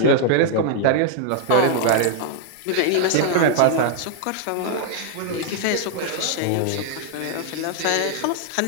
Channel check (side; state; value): both; different; correlation 0.00